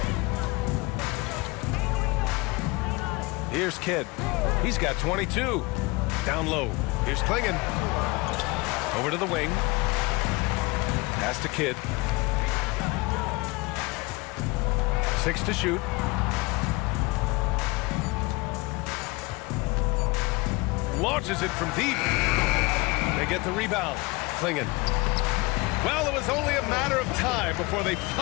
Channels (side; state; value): right; quieter; 24.2 dB